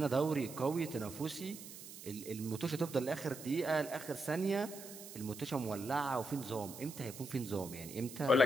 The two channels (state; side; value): noise; right; hiss, 13 dB below the sound